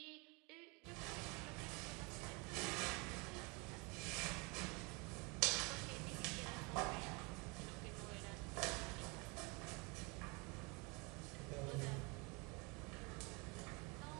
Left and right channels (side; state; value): left; quieter; 29.0 dB